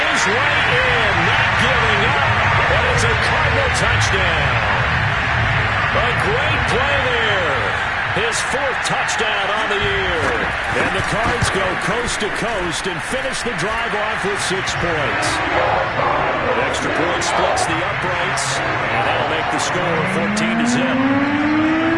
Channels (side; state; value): both; identical; correlation 1.00